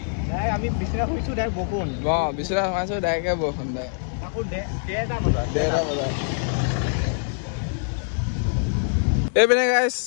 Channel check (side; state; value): right; silent; digital silence